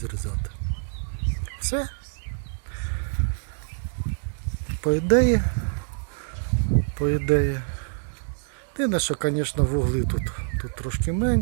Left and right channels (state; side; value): silent; left; digital silence